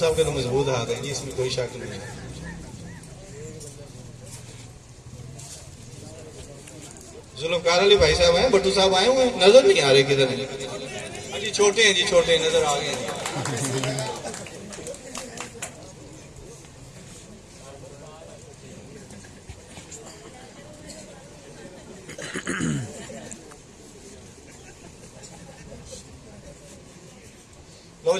के तो मजबूत हाथ है जी, इसमें कोई शक नहीं। जुल्फकार अली भाई साहब हैं, भट्टू साहब आए हुए हैं, नजर नहीं आ रहे किधर हैं जी। छोटे हैं जी, छोटे हैं, नजर आ गए हैं। लो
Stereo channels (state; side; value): identical; both; correlation 1.00